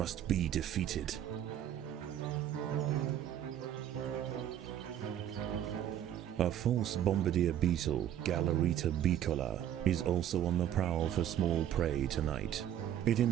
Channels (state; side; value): quieter; left; 10.8 dB